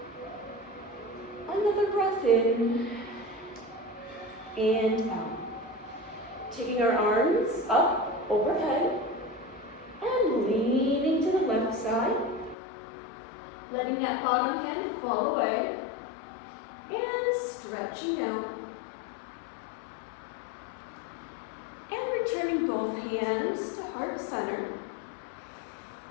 Another breath in and out. Taking our arms up overhead and leaning to the left side. Letting that bottom hand fall away and stretching out. And returning both hands to heart center.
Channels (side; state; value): right; drops out; at 12.6 s